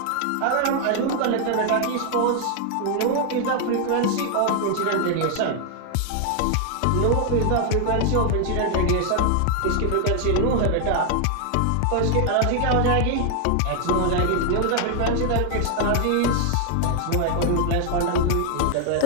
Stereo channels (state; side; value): different; both; correlation 0.00